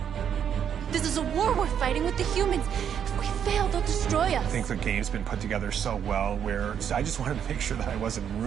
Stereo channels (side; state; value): left; quieter; 8.5 dB